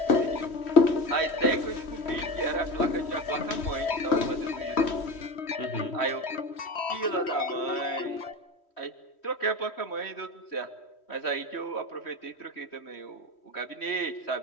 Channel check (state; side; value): late; right; 3.1 ms